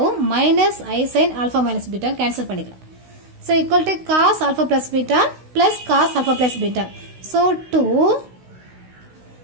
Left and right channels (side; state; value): left; late; 16 ms